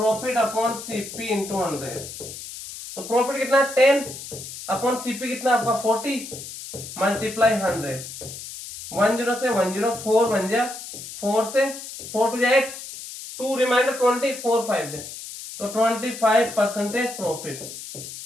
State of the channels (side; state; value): left; noise; hiss, 11 dB below the sound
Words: अपॉन सीपी इंटू 100। तो प्रॉफिट कितना 10 अपॉन सीपी कितना आपका 40 मल्टीप्लाई 100। 10 से 10 4 बन जा, 4 से 4 टू 8 2 रिमाइंडर 20 4 5 दे। तो 25% प्रॉफिट,